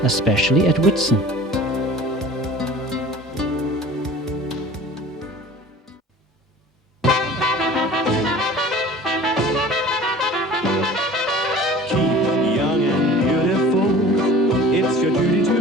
especially at Whitsun.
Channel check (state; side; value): normal; both; correlation 0.43